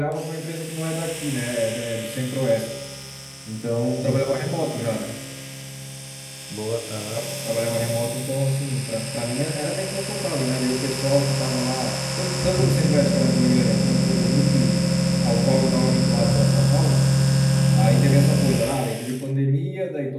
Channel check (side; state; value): both; identical; correlation 1.00